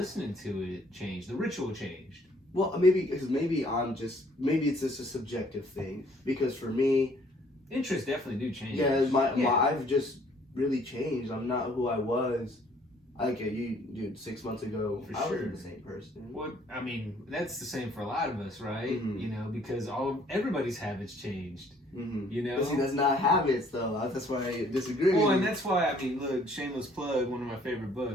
to it changed. The ritual changed. Well, maybe it's just a subjective thing. Because for me, interests definitely do change. Yeah, I've just really changed. I'm not who I was. Like you, dude, 6 months ago, I wasn't the same person. Well, I mean, that's the same for a lot of us, right? You know, because everybody's habits changed. You know, but see, that's not habits, though. That's why I disagree. Well, and that's why, I mean, look, shameless plug. One of my favorite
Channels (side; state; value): both; normal; correlation 0.60